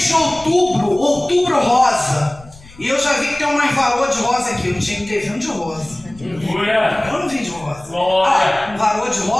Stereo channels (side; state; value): left; noise; rumble, 22 dB below the sound